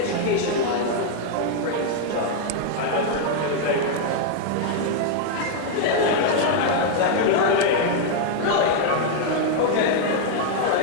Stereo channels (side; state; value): both; different; correlation 0.00